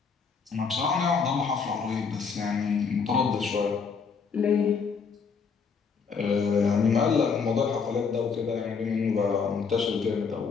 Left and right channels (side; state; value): right; quieter; 5.6 dB